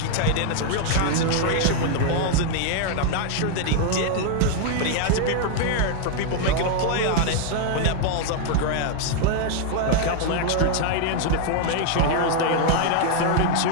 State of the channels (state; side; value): different; both; correlation 0.00